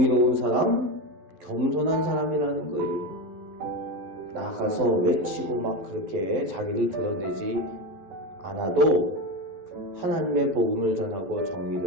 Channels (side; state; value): left; late; 11 ms